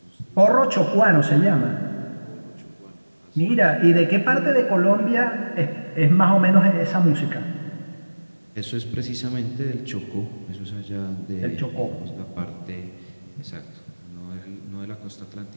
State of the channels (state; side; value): inverted; both; correlation -1.00